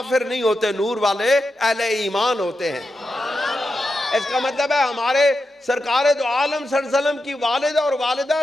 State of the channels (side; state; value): both; normal; correlation 0.88